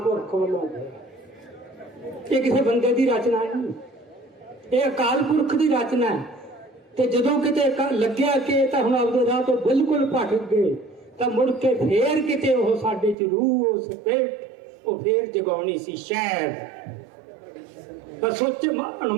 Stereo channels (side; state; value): left; drops out; at 13.2 s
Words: ਵੱਲੋਂ ਹੋਇਆ। ਇਹ ਕਿਸੇ ਬੰਦੇ ਦੀ ਰਚਨਾ ਨਹੀਂ, ਇਹ ਅਕਾਲ ਪੁਰਖ ਦੀ ਰਚਨਾ ਹੈ। ਤੇ ਜਦੋਂ ਕਿਤੇ ਲੱਗਿਆ ਕਿ ਤਾਂ ਹੁਣ ਆਪਦੇ ਰਾਹ ਤੋਂ ਬਿਲਕੁਲ ਭਟਕ ਗਏ, ਤਾਂ ਮੁੜ ਕੇ ਫੇਰ ਕਿਤੇ ਉਹ ਸਾਡੇ 'ਚ ਰੂਹ, ਉਸ ਪੇਟ, ਉਹ ਫੇਰ ਜਗਾਉਣੀ ਸੀ ਸ਼ਾਇਦ। ਪਰ ਸੋਚ